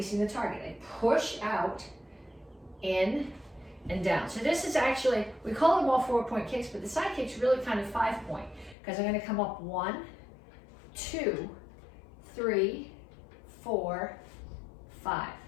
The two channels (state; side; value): drops out; right; at 8.8 s